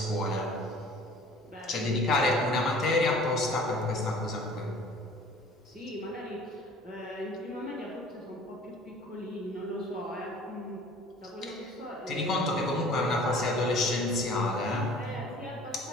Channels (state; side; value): normal; both; correlation 0.48